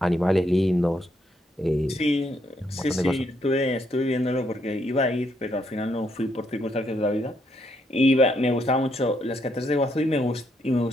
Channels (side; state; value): both; normal; correlation 0.75